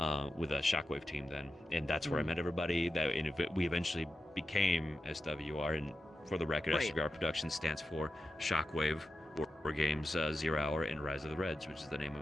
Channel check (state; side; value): normal; both; correlation 0.91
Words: With a Shockwave team then, and that's where I met everybody. We eventually became SWR, and for the record, SWR Productions stands for Shockwave, War Games, Zero Hour, and Rise of the Reds, which is the name